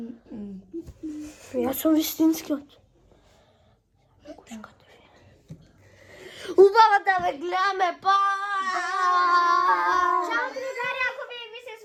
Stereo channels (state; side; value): identical; both; correlation 1.00